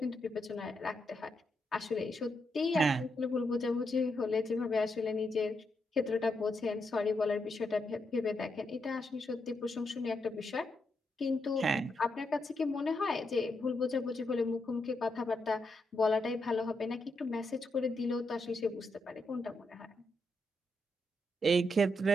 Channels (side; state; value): both; normal; correlation 0.82